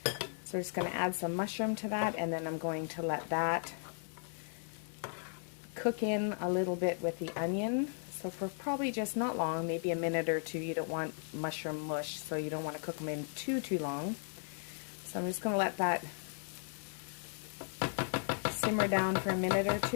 So I'm just going to add some mushroom to that, and then I'm going to let that cook in a little bit with the onion. So for probably just not long, maybe a minute or two. You don't want mushroom mush, so you don't want to cook them in too long. So I'm just going to let that simmer down for a minute or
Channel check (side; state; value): right; silent; 54 dB below the other